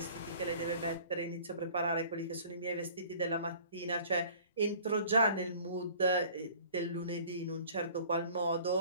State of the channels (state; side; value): inverted; both; correlation -0.50